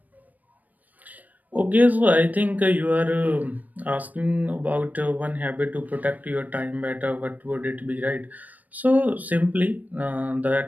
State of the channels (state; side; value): late; left; 0.080 ms